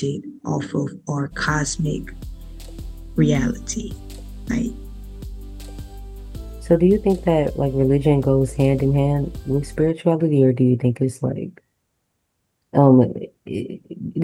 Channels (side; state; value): both; identical; correlation 1.00